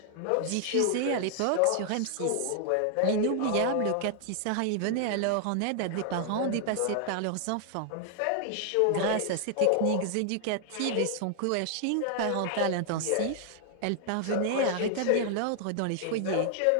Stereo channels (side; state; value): both; different; correlation 0.00